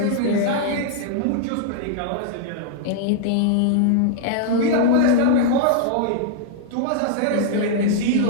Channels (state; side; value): different; both; correlation -0.01